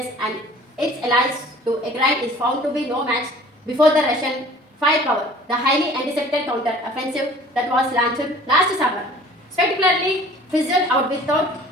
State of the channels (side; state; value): both; normal; correlation 0.49